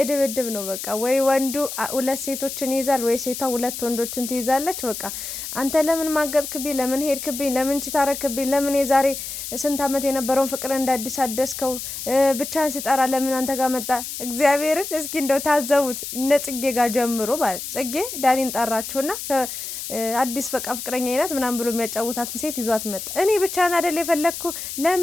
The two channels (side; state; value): left; noise; hiss, 7 dB below the sound